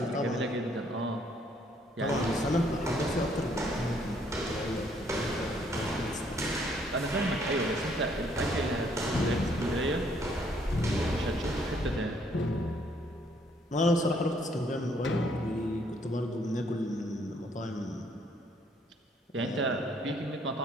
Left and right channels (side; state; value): both; normal; correlation 0.67